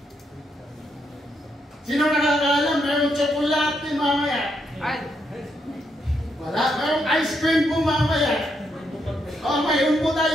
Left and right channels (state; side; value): normal; both; correlation 0.79